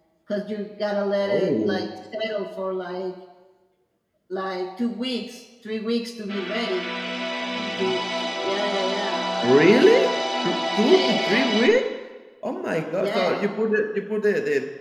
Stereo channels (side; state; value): both; identical; correlation 1.00